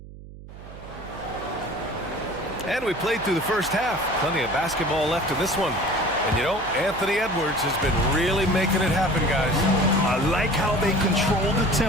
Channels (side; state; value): right; noise; hum, 16 dB below the sound